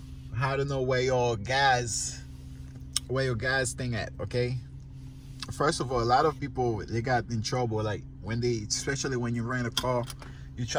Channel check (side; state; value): both; identical; correlation 1.00